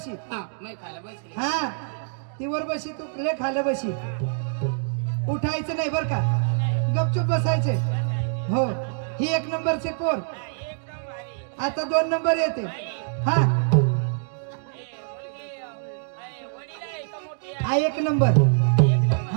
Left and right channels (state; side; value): silent; left; digital silence